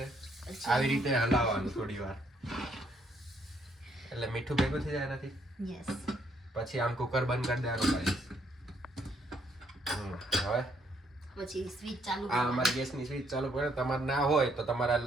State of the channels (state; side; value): normal; both; correlation 0.71